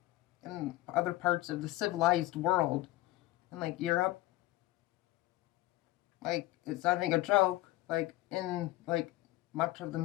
in other parts of the civilized world and like Europe. Like, it's not even a joke. Like, in like much of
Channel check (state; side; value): quieter; right; 17.4 dB